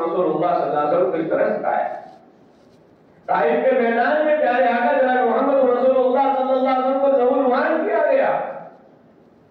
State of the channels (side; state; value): both; identical; correlation 1.00